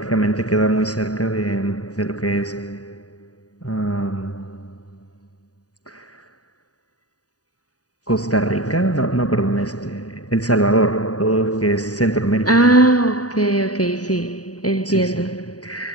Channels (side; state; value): right; late; 0.68 ms